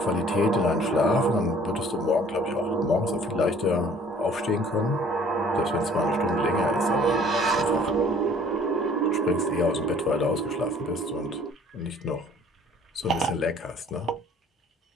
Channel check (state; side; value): normal; both; correlation 0.55